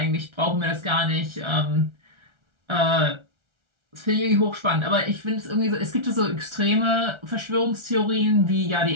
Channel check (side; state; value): left; late; 1.3 ms